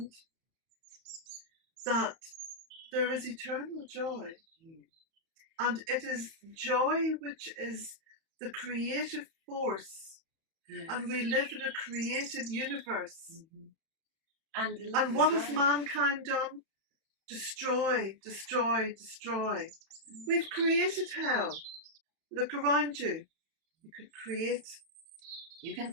that there is eternal joy. And it is joy which is the creative force. Yes. And we live in a creative universe. And what has mankind done? Destroy, destroy, destroy. We've created hell. Look around you. You can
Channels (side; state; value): left; late; 31 ms